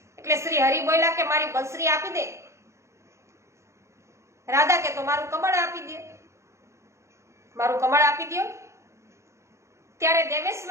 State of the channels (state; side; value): late; left; 0.14 ms